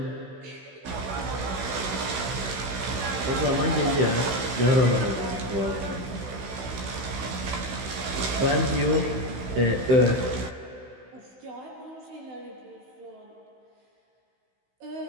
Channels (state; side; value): late; left; 16 ms